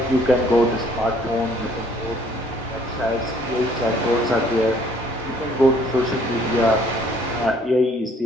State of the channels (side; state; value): both; normal; correlation 0.61